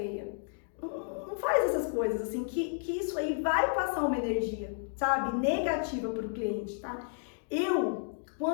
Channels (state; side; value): silent; right; digital silence